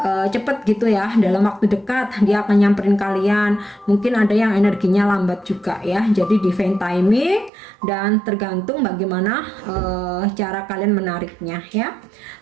cepet gitu ya, dalam waktu dekat dia akan nyamperin kalian. Mungkin ada yang energinya lambat juga ya. Jadi divine timing dan tergantung bagaimana cara kalian menariknya ya.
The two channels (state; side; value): drops out; left; at 7.5 s